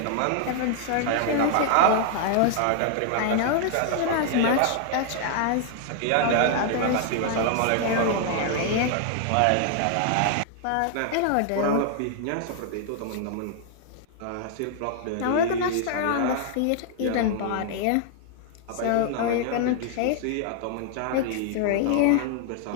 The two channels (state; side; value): different; both; correlation 0.00